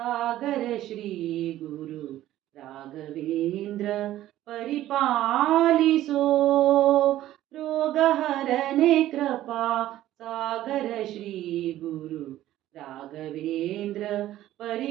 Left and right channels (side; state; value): left; quieter; 13.9 dB